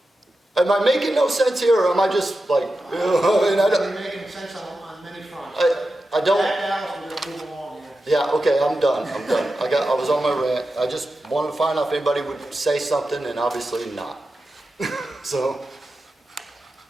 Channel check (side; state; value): both; normal; correlation 0.91